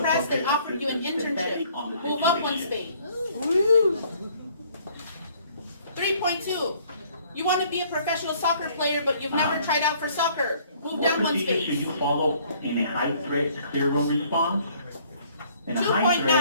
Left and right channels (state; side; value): inverted; both; correlation -0.60